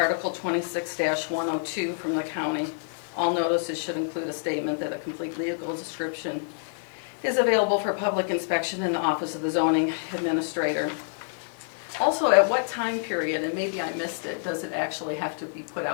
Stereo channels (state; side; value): silent; right; digital silence